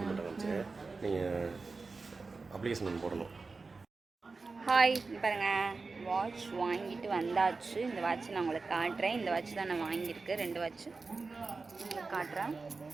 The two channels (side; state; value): left; quieter; 4.1 dB